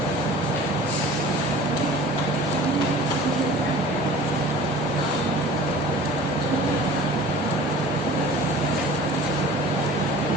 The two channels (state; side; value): normal; both; correlation 0.43